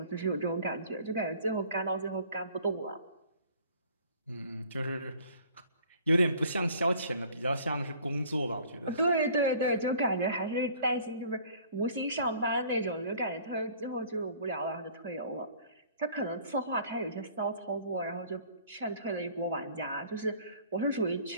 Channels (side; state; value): both; inverted; correlation -0.52